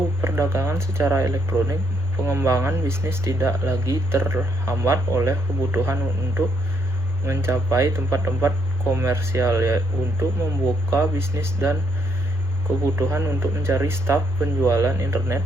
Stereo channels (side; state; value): both; normal; correlation 0.73